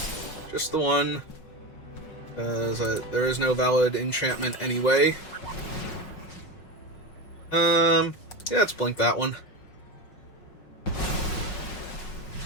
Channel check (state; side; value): late; right; 5.5 ms